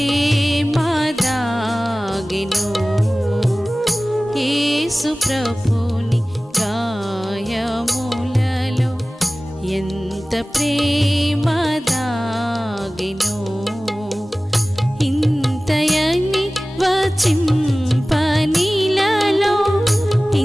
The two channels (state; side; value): normal; both; correlation 0.98